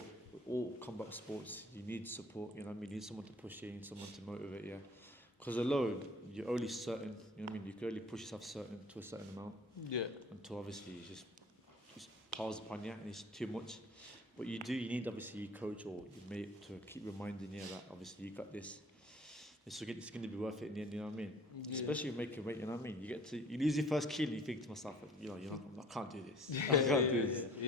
all combat sports, you need support. You know what I mean? You need someone to push you, you need someone to motivate you. Because alone, you're only certain. You know what I mean? You can only push yourself to a certain amount. Yeah. Until obviously it just piles upon you and it's too much. But you need obviously your coach or your mate to keep reminding you that obviously you got this. It's going to be worth it in the end, you know what I mean? Yeah. Especially making weight, you know what I mean? You lose your first kilo and you think to myself, I can't do this. I can't do this.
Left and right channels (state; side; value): normal; both; correlation 0.50